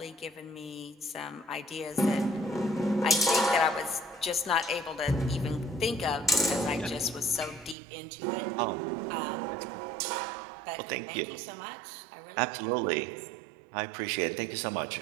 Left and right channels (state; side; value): drops out; left; at 7.8 s